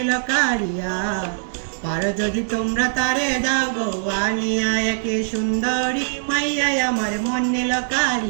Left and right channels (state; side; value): silent; left; digital silence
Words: কারিয়া, আর যদি তোমরা তারে দাও গো আনিয়া। একে সুন্দরী মাইয়াই আমার মন নিল